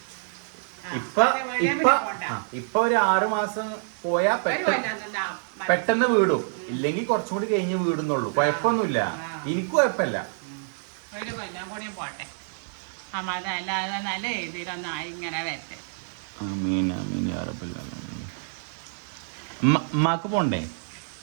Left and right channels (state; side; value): silent; left; digital silence